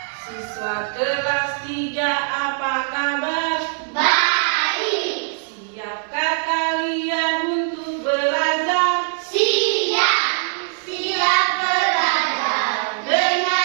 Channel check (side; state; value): left; silent; digital silence